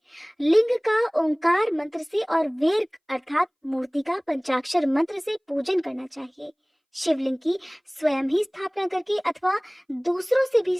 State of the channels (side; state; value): both; identical; correlation 1.00